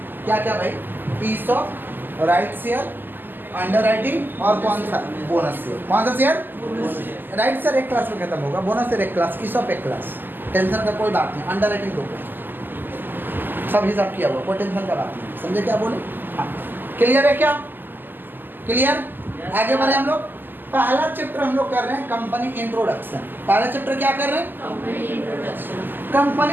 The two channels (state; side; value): late; left; 0.091 ms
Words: क्या क्या भाई, ESOP, right share, underwriting और कौन सा, बोनस शेयर। कौन सा शेयर, राइट शेयर एक क्लास में खत्म होगा, बोनस शेयर एक क्लास, ईसॉप एक क्लास, टेंशन का कोई बात नहीं। अंडर राइटिंग 2 क्लास, सब हिसाब किया हुआ, कोई टेंशन का बात नहीं। समझे क्या बोले। हाँ क्लियर है क्या, क्लियर। आगे बढ़े हम लोग। पहला चैप्टर हम लोग कर रहे हैं कंपनी इंट्रोडक्शन। पहला चैप्टर क्या कर रहे हैं, कंपनी इंट्रोडक्शन।